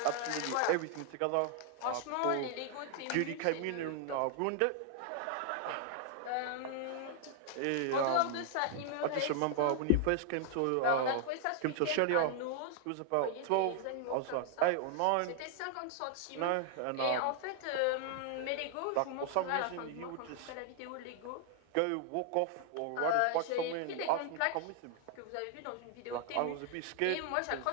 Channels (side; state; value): both; different; correlation 0.00